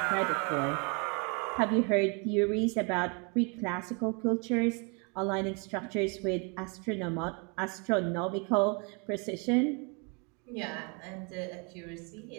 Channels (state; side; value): quieter; left; 33.8 dB